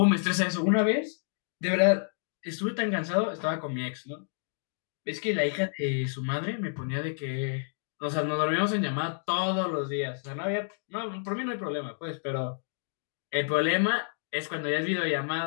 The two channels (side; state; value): right; silent; digital silence